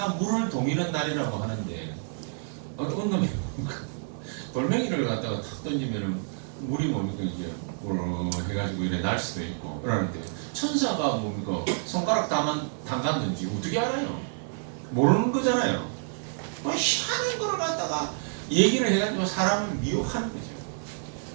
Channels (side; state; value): left; silent; digital silence